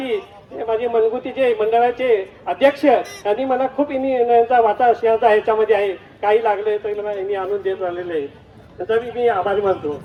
माझे मनगुतीचे मंडळाचे अध्यक्ष यांनी मला खूप यांचा वाटा सिंहाचा ह्याच्यामध्ये आहे. काही लागले तर मला यांनी आणून देत राहिलेले आहे. त्याचा मी आभारी मानतो.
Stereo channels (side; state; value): both; identical; correlation 1.00